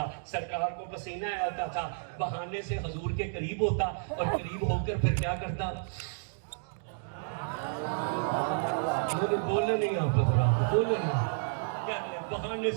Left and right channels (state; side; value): silent; left; digital silence